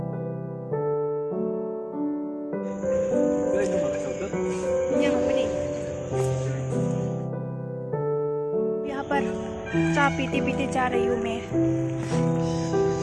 यहाँ पर चाय पीते पीते जा रही हूँ मैं।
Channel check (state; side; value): identical; both; correlation 1.00